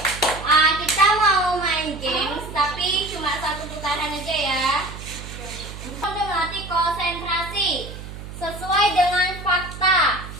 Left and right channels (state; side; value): noise; right; hum, 12 dB below the sound